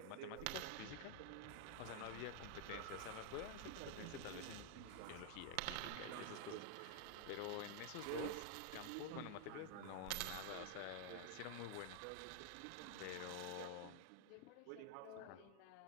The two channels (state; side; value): different; both; correlation 0.00